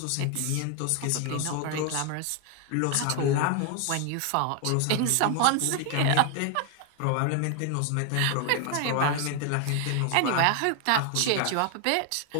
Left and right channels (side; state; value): both; different; correlation 0.01